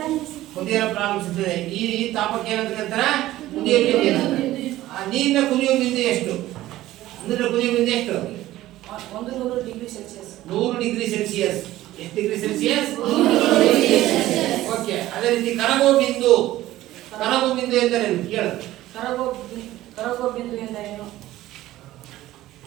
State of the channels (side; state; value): left; quieter; 15.4 dB